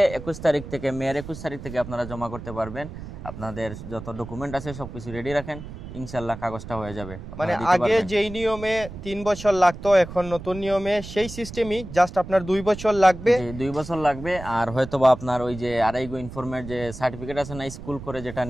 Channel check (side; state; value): right; noise; rumble, 12 dB below the sound